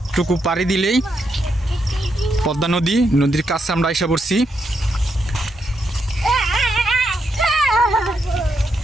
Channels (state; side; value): normal; both; correlation 0.81